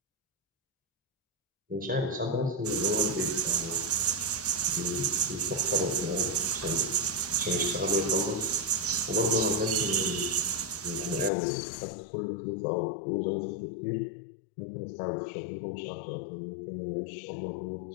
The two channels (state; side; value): drops out; right; at 11.3 s